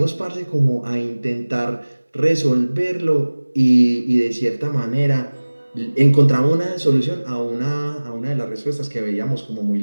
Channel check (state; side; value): inverted; both; correlation -1.00